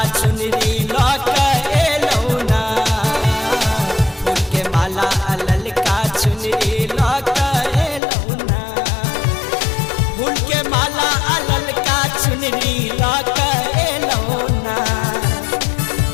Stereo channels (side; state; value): right; drops out; at 8.0 s